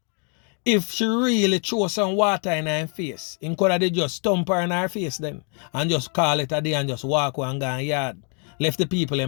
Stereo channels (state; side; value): quieter; right; 39.3 dB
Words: If she really throw some water in her face, him could have just stomp her in her face then and just call it a day and just walk away and go in yard. Left the people